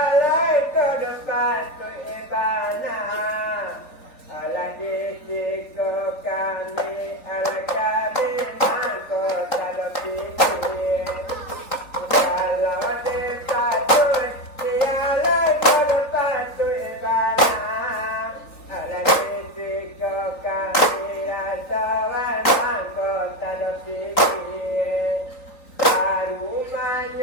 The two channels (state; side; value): late; right; 3.9 ms